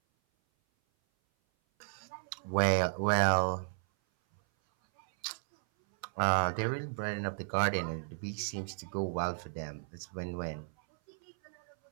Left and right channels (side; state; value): left; silent; 55 dB below the other